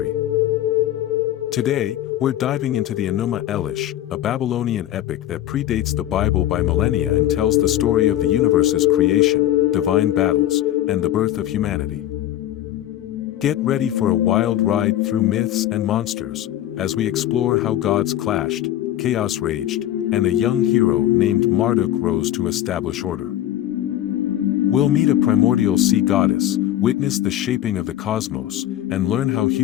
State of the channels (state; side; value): quieter; right; 12.8 dB